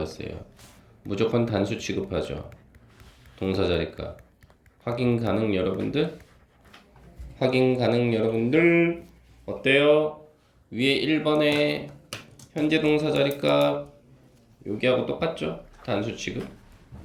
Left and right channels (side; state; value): both; identical; correlation 1.00